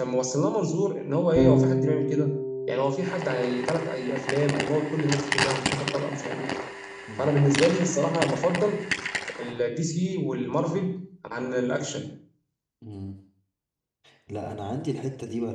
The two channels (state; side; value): identical; both; correlation 1.00